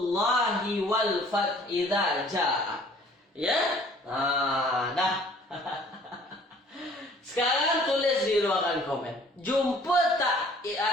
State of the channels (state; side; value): normal; both; correlation 0.54